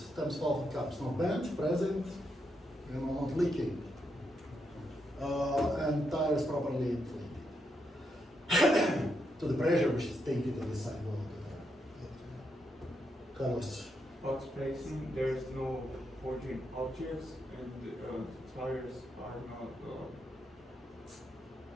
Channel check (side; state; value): both; normal; correlation 0.81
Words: stems, valve and caps? No bent, present, not leaking. And tires properly inflated. To the pressure which is taken to the sidewall of the car. Carlos. Box placing, there's no forging objects, and tires are not